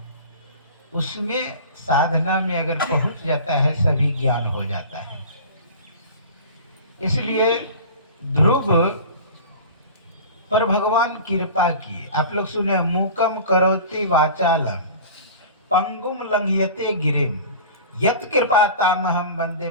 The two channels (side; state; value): both; inverted; correlation -0.38